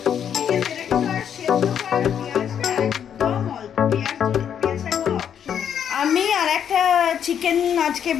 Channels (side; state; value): right; quieter; 8.7 dB